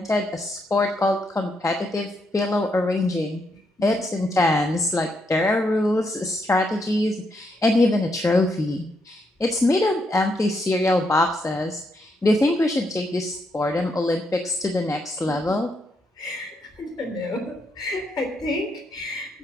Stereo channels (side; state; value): both; normal; correlation 0.78